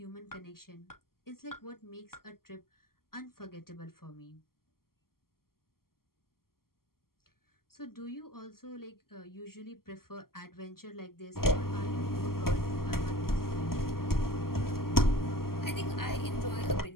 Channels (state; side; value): late; right; 0.92 ms